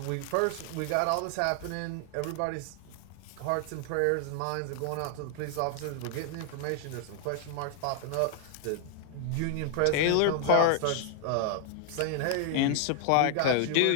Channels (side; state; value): both; different; correlation 0.00